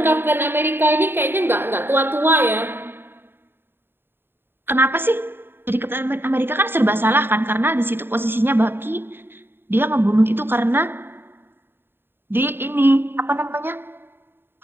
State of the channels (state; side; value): late; left; 0.10 ms